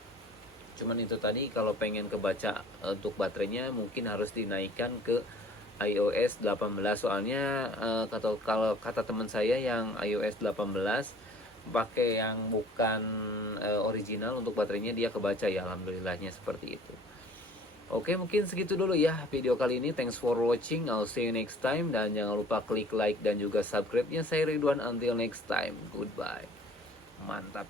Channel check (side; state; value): both; normal; correlation 0.50